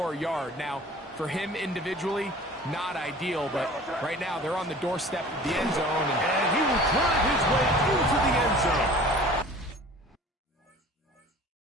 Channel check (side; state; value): both; normal; correlation 0.45